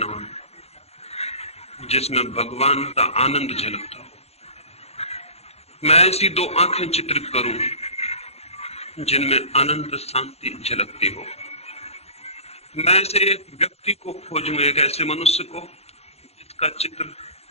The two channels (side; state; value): right; late; 0.30 ms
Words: जिसमें भगवान का आनंद झलकता हो। मैं ऐसी दो आंखें चित्रित करूं जिनमें अनंत शांति झलकती हो। मैं ऐसे एक व्यक्ति को खोजूं, एक ऐसे मनुष्य को जिसका चित्र